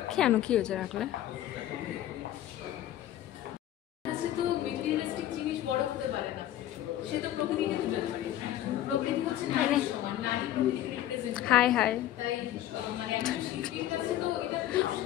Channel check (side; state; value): right; quieter; 12.9 dB